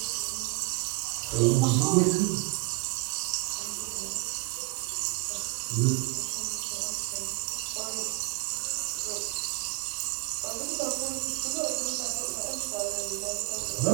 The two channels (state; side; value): quieter; left; 27.5 dB